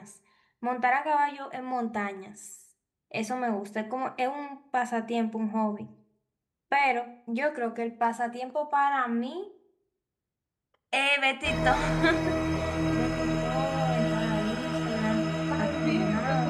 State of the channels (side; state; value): both; identical; correlation 1.00